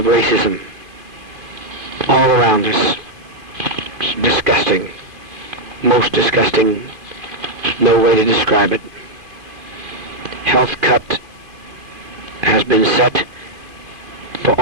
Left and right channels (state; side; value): late; left; 2.5 ms